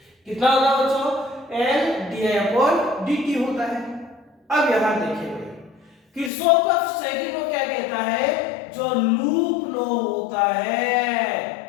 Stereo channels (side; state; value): right; drops out; at 6.3 s